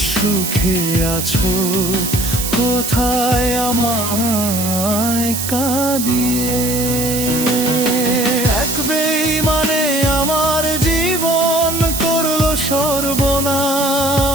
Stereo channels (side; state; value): right; noise; hiss, 4 dB below the sound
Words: সুখে আছো কোথায় আমায় কাঁদিয়ে। এক বেঈমানে আমার জীবন করলো সর্বনাশ।